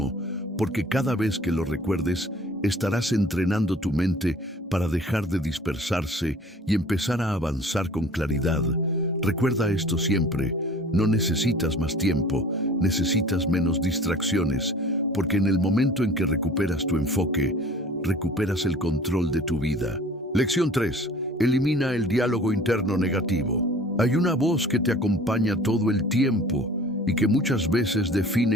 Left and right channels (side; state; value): both; normal; correlation 0.47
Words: porque cada vez que lo recuerdes, estarás entrenando tu mente para dejar de dispersarse y empezar a avanzar con claridad. Recuerda esto siempre: no necesitas más tiempo, necesitas menos distracciones, porque en el momento en que recuperas tu enfoque, recuperas el control de tu vida. Lección 3. Elimina el diálogo interno negativo. Hay una voz que te acompaña todo el tiempo y que muchas veces